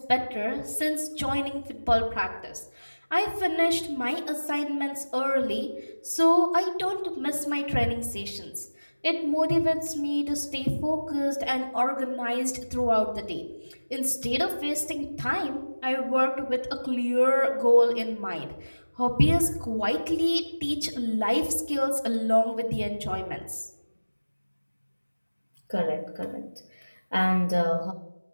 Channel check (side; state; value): both; inverted; correlation -1.00